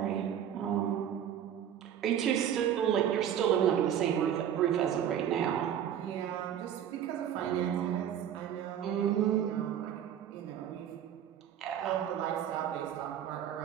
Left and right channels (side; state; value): left; quieter; 9.7 dB